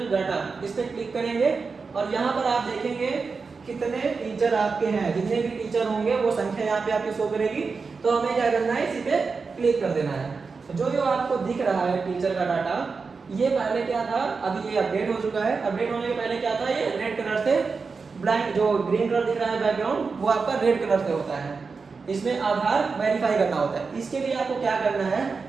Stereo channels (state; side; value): quieter; left; 4.7 dB